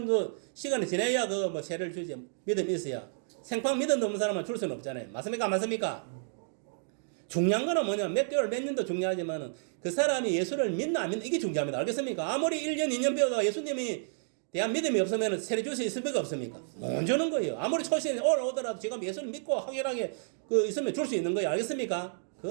정도 시간이 지나야 그 뭐 세례를 주지. 믿음이 있어야. 생판 믿음 없는 사람은 줄 수는 없잖아요. 맞습니까? 안 맞습니까? 중요한 거는 뭐냐면 몇 개월 몇 년도 중요하지만은 그 사람이 예수를 믿나 안 믿나 이게 중요합니다. 알겠습니까? 아무리 1년 2년 배우다가 예수님이 대한 믿음이 없으면 세례 줄 수 있습니까? 없습니까? 못 주는 거예요. 아무리 초신에 올라오더라도 지금 예수를 믿고 확실하게 그 있으면 줄 수 있는 거예요. 알겠습니까?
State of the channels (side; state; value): left; silent; digital silence